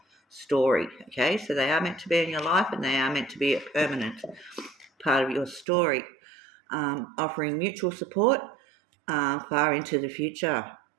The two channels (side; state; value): left; drops out; at 5.7 s